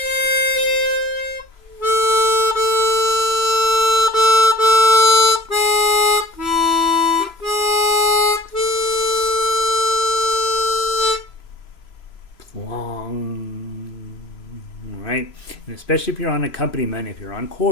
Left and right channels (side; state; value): right; late; 3.0 ms